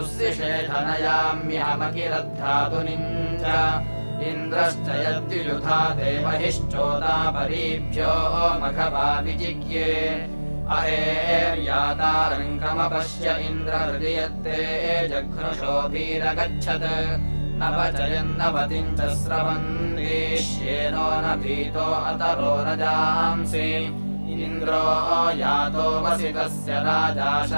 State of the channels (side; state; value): both; inverted; correlation -1.00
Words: च इन्द्रश्च यद्युयुधा देवहिश्चोदापरीभ्यो मघवा विजिज्ञे अहेर्यातारङ्गमपश्य इन्द्रहृदि यत्ते जघ्नुषोभिरगच्छत् न वचयन्नवतिम् च स्रवन्तीष्येनो न भीतो अतरो न जांसि इन्द्रो यातो वसितस्य राजा